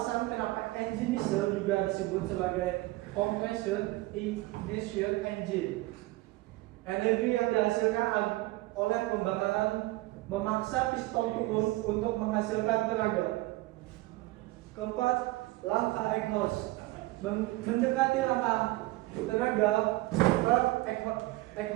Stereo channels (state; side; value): quieter; left; 19.8 dB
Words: kenapa engine diesel juga disebut sebagai compression ignition engine. Energi yang dihasilkan oleh pembakaran memaksa piston turun untuk menghasilkan tenaga. 4. Langkah exhaust. Mendekati langkah tenaga,